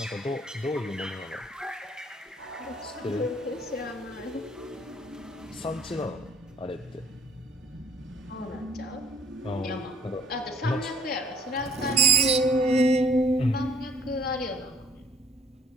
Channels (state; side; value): normal; both; correlation 0.57